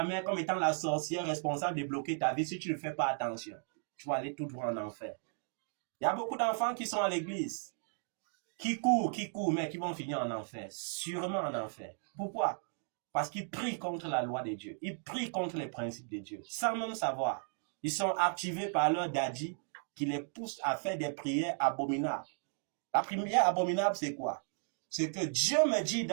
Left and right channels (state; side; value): silent; left; 54 dB below the other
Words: mère comme étant la sorcière responsable de bloquer ta vie. Si tu ne fais pas attention, tu vas aller tout droit en enfer. Il y a beaucoup d'enfants qui sont à l'église, qui courent, mais qui vont finir en enfer. Sûrement en enfer. Pourquoi? Parce qu'ils prient contre la loi de Dieu. Ils prient contre les principes de Dieu, sans même savoir. Ils sont activés par leur daddy qui les pousse à faire des prières abominables. La prière abominable, c'est quoi? C'est que Dieu me dit